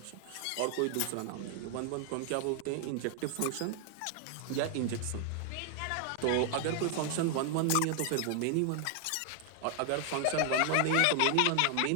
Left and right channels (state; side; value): different; both; correlation 0.00